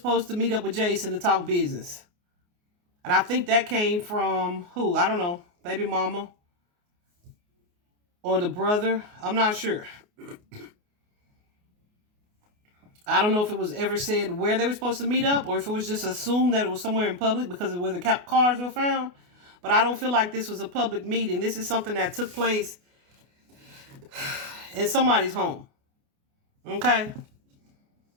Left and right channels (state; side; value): late; left; 28 ms